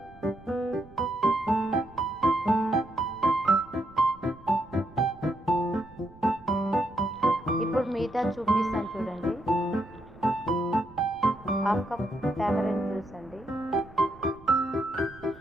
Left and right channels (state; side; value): noise; right; rumble, 23 dB below the sound